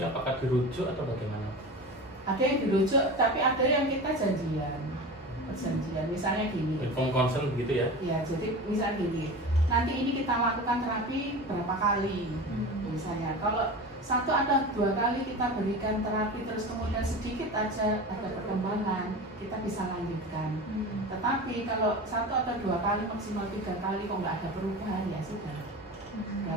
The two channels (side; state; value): both; normal; correlation 0.31